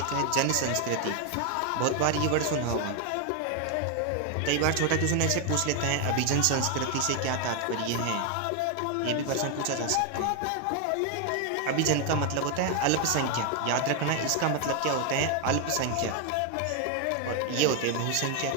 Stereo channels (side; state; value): both; different; correlation 0.01